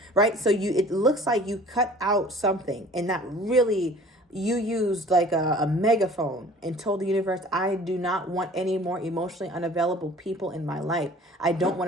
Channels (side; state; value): both; normal; correlation 0.48